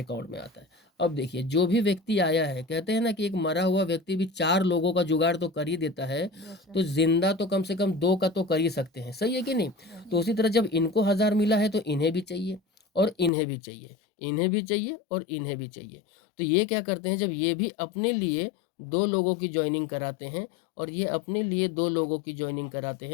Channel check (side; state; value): right; drops out; at 13.3 s